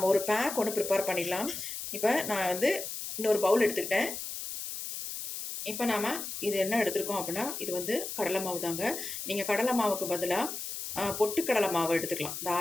ஒரு பேக் ஒன்று ப்ரிப்பேர் பண்ணிடலாம். இப்போ நான் வந்து இன்னொரு பவுல் எடுத்துக்கிட்டேன். இப்போ நாம் இது என்ன எடுத்துருக்கோம் அப்படின்னா, இது வந்து கடலை மாவு தாங்க. நீங்கள் கடலை மாவுக்கு பதிலாக பொட்டுக்கடலை மாவு எடுத்துக்கலாம்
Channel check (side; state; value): left; noise; hiss, 6 dB below the sound